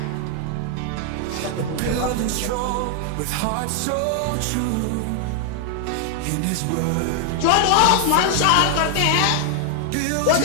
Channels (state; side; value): different; both; correlation 0.00